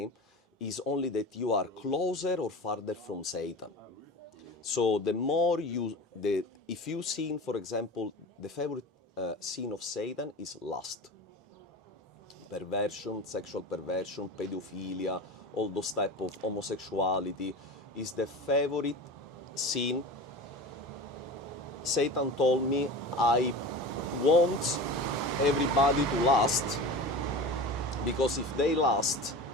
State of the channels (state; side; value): normal; both; correlation 0.31